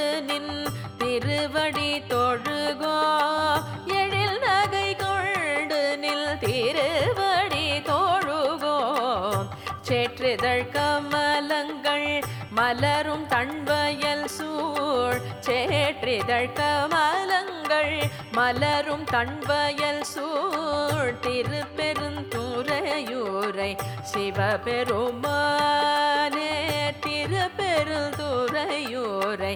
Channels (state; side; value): identical; both; correlation 1.00